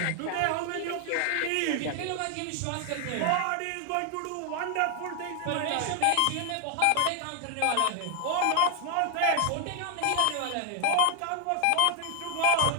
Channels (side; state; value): both; different; correlation 0.00